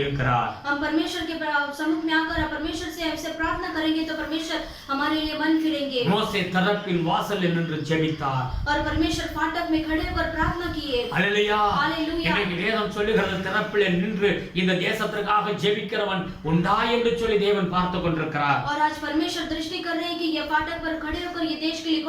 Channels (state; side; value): identical; both; correlation 1.00